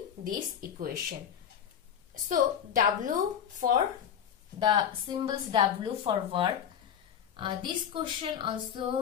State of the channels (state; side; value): quieter; right; 8.8 dB